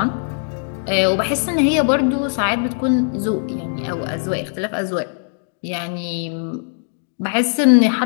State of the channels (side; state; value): right; silent; 66 dB below the other